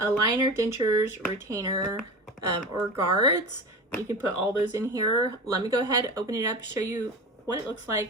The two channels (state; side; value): normal; both; correlation 0.29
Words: liner, dentures, retainer, or guards. You can put all those in here. Let me go ahead, open it up, show you what it looks